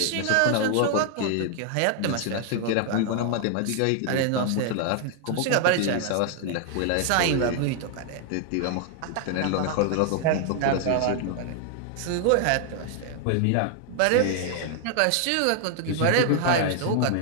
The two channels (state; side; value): different; both; correlation 0.00